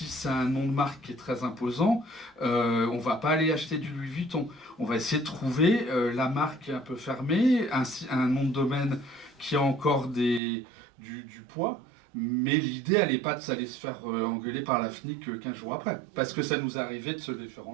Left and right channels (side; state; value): left; drops out; at 10.4 s